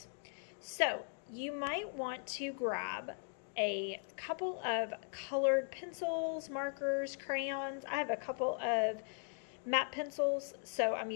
So you might want to grab a couple of colored pencils, markers, crayons. I have a couple of matte pencils, so I'm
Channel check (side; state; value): right; silent; 52 dB below the other